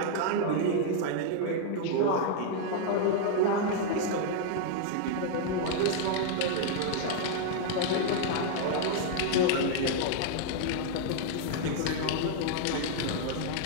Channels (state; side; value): different; both; correlation -0.01